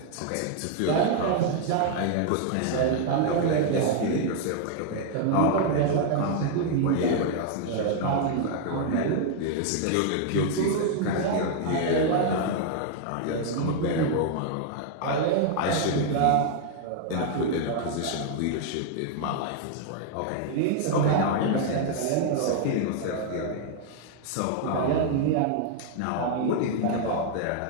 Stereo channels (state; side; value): different; both; correlation 0.00